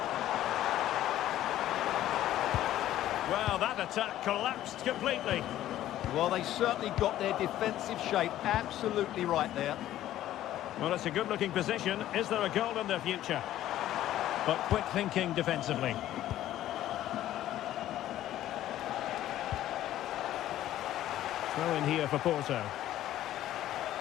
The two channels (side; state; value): right; quieter; 13.2 dB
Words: Well, that attack collapsed completely. Well, they certainly got their defensive shape absolutely right there. Well, it's a good-looking position. Is there a goal in the future? But quick thinking defensively. Throw in here for Porto.